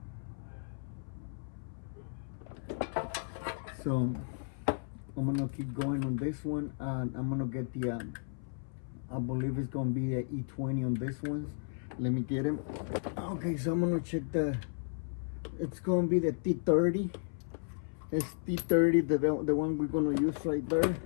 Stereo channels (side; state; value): right; silent; 55 dB below the other